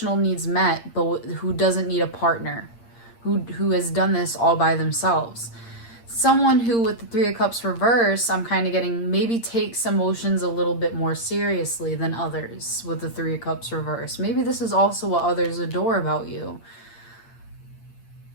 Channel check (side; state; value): right; late; 8.6 ms